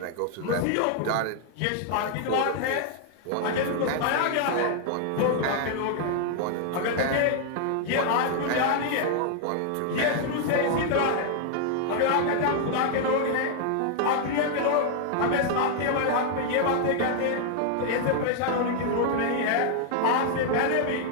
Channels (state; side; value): different; both; correlation 0.00